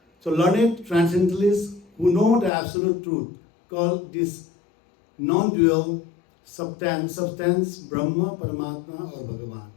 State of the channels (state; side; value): drops out; right; at 2.5 s